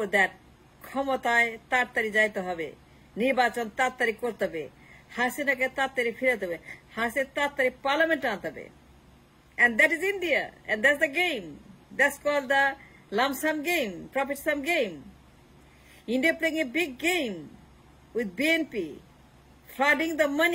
that ক্ষমতায় তাড়াতাড়ি যাইতে হবে, নির্বাচন তাড়াতাড়ি করতে হবে, হাসিনাকে তাড়াতাড়ি ফিরাতে হবে, হাসিনা তাড়াতাড়ি পার্লামেন্ট আনতে হবে। And that is India, and that's the game. That's called the lump sum game, profit sum game. India playing a big game with BNP, flooding the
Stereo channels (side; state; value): both; identical; correlation 1.00